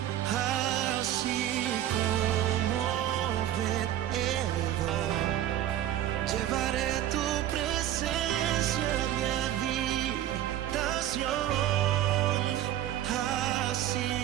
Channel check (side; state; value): left; quieter; 12.2 dB